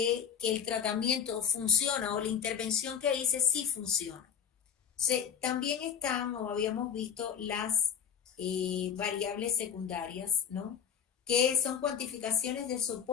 que el tratamiento funciona o la intervención que hice sí funciona. También están, o habíamos visto, las variables secundarias, ¿no? Que son cuantificaciones de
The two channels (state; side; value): quieter; right; 7.9 dB